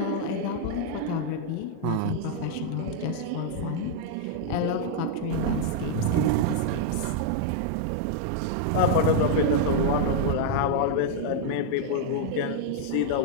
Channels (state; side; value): different; both; correlation -0.01